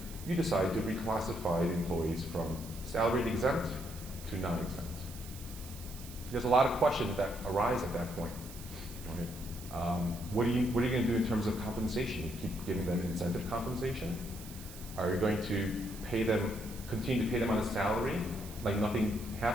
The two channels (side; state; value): right; noise; hiss, 15 dB below the sound